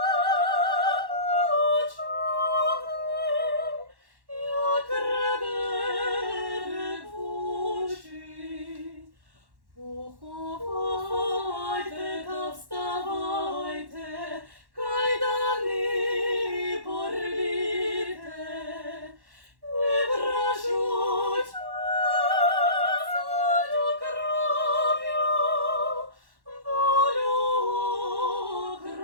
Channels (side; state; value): left; late; 1.1 ms